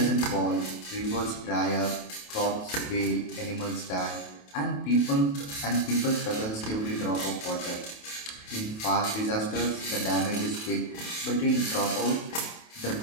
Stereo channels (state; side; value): late; right; 28 ms